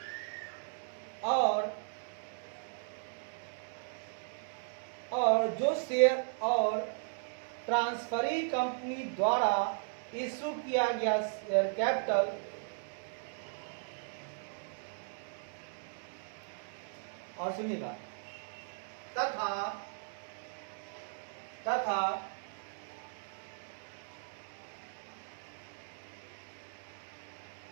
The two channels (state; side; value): silent; left; digital silence